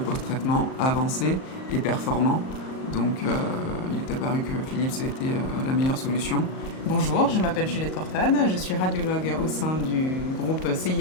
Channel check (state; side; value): late; right; 38 ms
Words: avancés et performants. Donc il est apparu que Philips était la meilleure solution. Bonjour, je m'appelle Juliette Cortade, je suis radiologue au sein du groupe